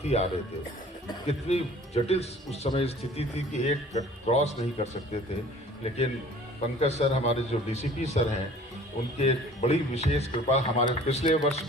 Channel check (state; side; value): normal; both; correlation 0.49